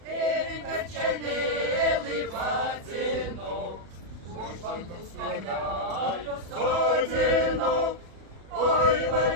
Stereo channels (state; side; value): late; left; 37 ms